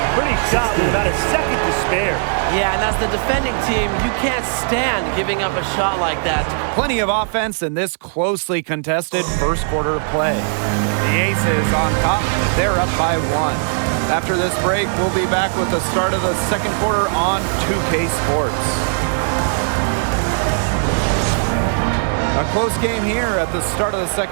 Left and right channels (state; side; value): silent; left; digital silence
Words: Pretty shot with about a second to spare. Yeah, and as the defending team, you can't stand giving up a shot like that. Plenty of offense in this closely contested first quarter of play. The Aces on top. They're up by 1. After this break, we'll be back with the start of the second quarter on 2K Sports. A close game here at the start of the